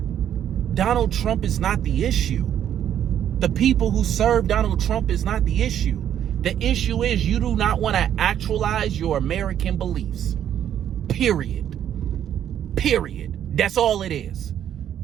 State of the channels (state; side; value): quieter; left; 10.1 dB